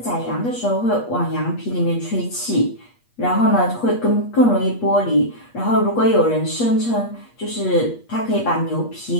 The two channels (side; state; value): right; late; 8.4 ms